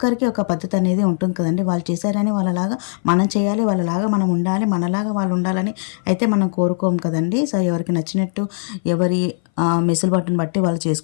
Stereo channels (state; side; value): silent; right; 60 dB below the other